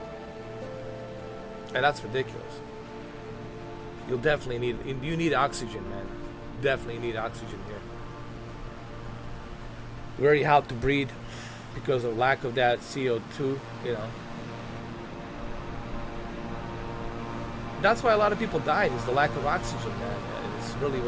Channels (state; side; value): identical; both; correlation 1.00